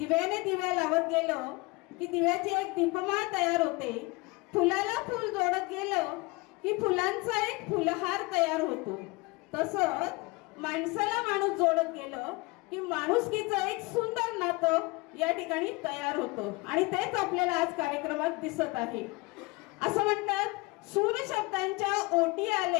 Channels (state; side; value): quieter; right; 24.9 dB